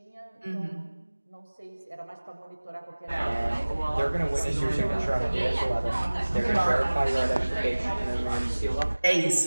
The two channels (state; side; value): inverted; both; correlation -1.00